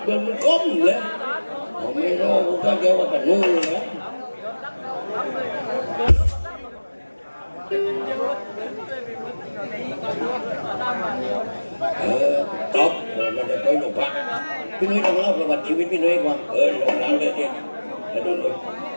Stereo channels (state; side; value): inverted; both; correlation -1.00